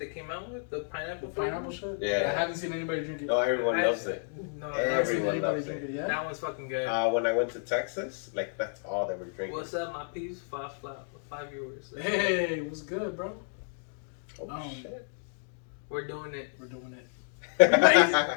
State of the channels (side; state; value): right; silent; digital silence